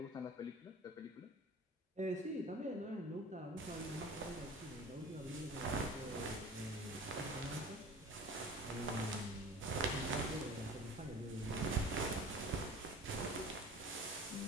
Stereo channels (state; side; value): normal; both; correlation 0.40